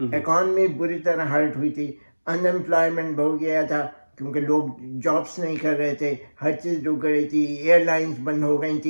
اکانومی بری طرح ہرٹ ہوئی تھی، ان امپلائمنٹ بڑھ گیا تھا کیونکہ لوگ جابس نہیں کر رہے تھے، ہر چیز رک گئی تھی، ایئر لائنز بند ہو گئی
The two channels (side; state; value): both; inverted; correlation -1.00